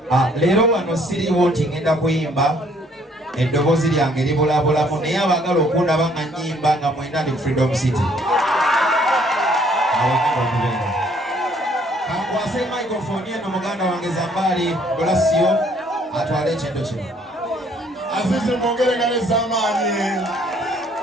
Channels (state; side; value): normal; both; correlation 0.63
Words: Leero wano siriwo nti ngenda kuyimba eddoboozi lyange libulabulamu naye abagala okundaba nga nnyimba nga mwenda ndi Freedom City. Kankwase microphone eno muganda wange Zambali Blasio atwale ekintu kino. Azizi mwongerengane z'amaanyi.